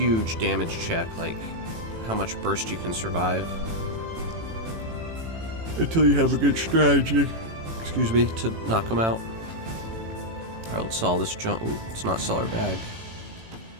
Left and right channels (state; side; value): late; left; 18 ms